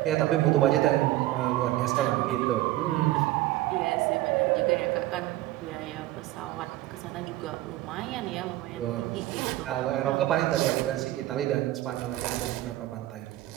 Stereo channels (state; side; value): quieter; left; 16.0 dB